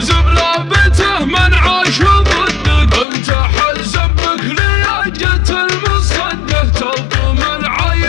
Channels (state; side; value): drops out; right; at 3.1 s